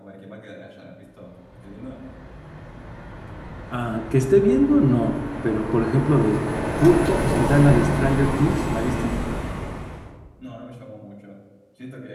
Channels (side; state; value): both; identical; correlation 1.00